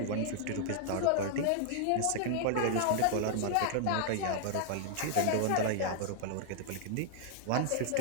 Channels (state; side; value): different; both; correlation -0.01